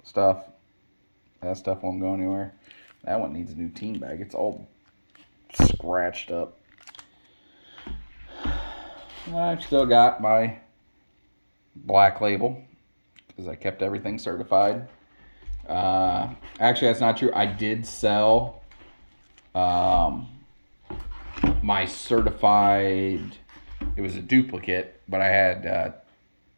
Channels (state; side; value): inverted; both; correlation -1.00